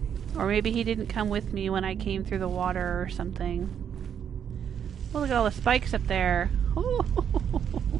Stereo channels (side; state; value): left; quieter; 8.4 dB